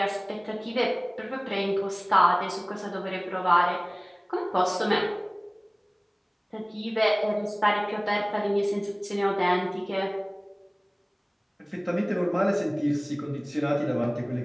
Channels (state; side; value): identical; both; correlation 1.00